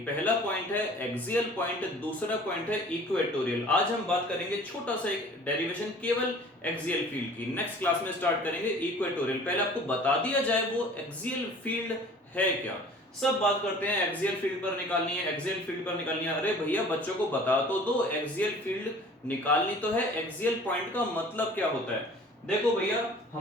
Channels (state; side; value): normal; both; correlation 0.47